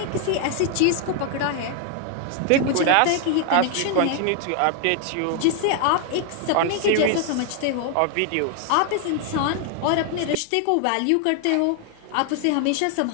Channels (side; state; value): both; different; correlation 0.00